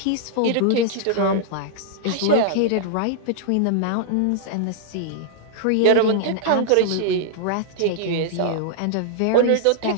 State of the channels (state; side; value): different; both; correlation -0.01